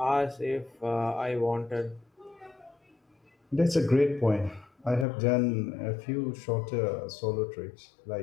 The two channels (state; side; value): drops out; right; at 5.1 s